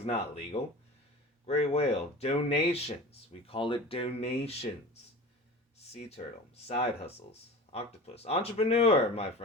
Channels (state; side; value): normal; both; correlation 0.36